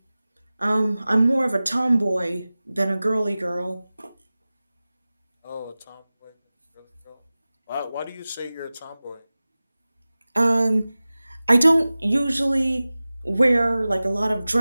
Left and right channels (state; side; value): inverted; both; correlation -0.97